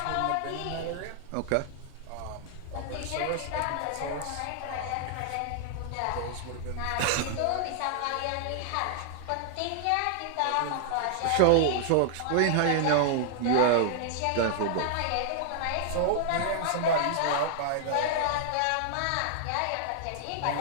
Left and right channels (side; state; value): both; different; correlation -0.01